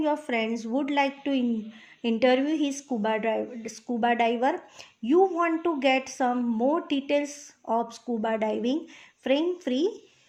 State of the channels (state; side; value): identical; both; correlation 1.00